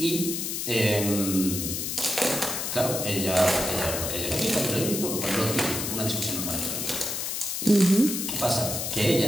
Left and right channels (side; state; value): left; noise; hiss, 3 dB below the sound